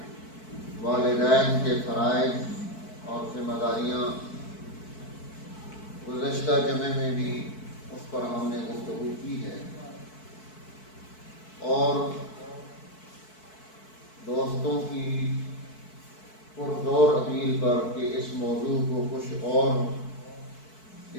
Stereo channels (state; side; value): late; right; 4.6 ms